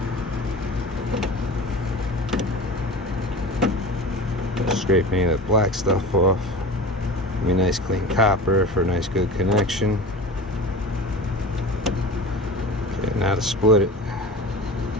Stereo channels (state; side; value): normal; both; correlation 0.34